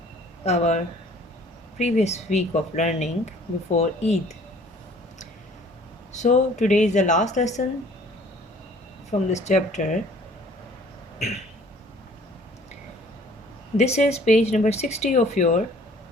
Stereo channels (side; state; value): both; normal; correlation 0.54